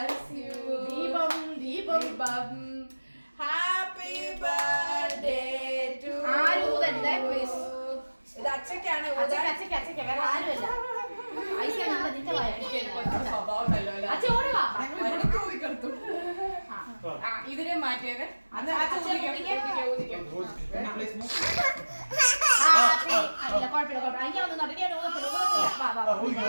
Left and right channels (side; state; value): both; inverted; correlation -1.00